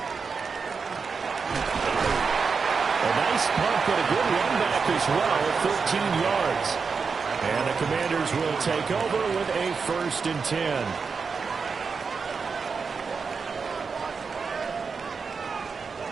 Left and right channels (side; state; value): left; quieter; 5.2 dB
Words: A nice punt, but a good run back as well at 13 yards. And the Commanders will take over with a 1st and 10.